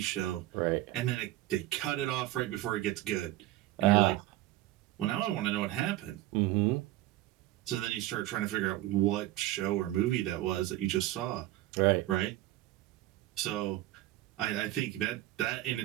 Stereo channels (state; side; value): quieter; left; 16.1 dB